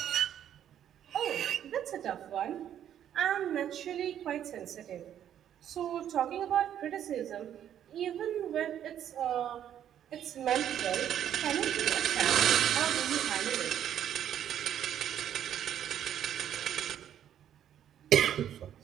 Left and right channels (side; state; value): left; quieter; 10.2 dB